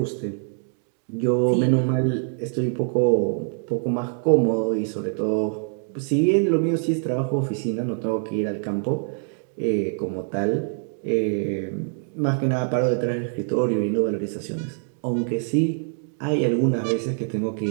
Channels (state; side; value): silent; left; 62 dB below the other